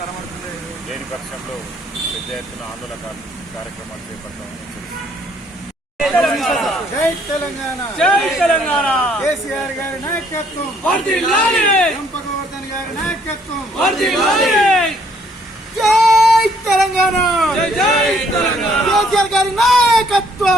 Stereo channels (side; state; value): both; normal; correlation 0.65